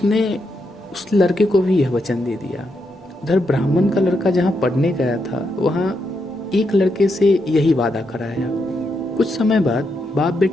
उस लड़के को भी यह वचन दे दिया। उधर ब्राह्मण का लड़का जहाँ पढ़ने गया था, वहाँ एक लड़के से यही वादा कराया। कुछ समय बाद बाप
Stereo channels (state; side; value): normal; both; correlation 0.82